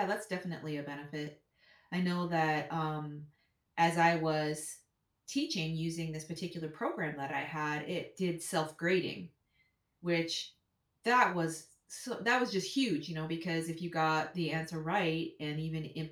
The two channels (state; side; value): identical; both; correlation 1.00